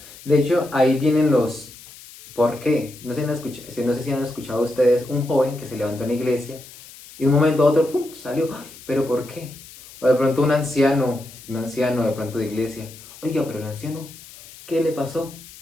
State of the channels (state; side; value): noise; left; hiss, 19 dB below the sound